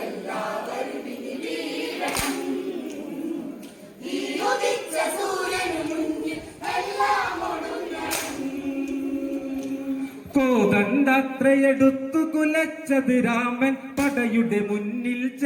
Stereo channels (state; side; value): identical; both; correlation 1.00